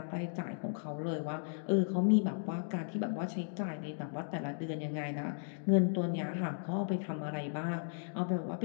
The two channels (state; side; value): silent; right; digital silence